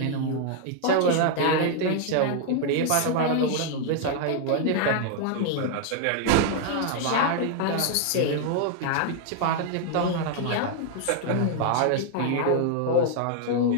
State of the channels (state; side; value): different; both; correlation 0.00